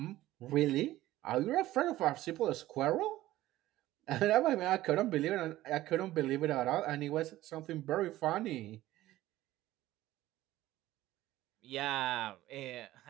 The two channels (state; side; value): quieter; left; 15.8 dB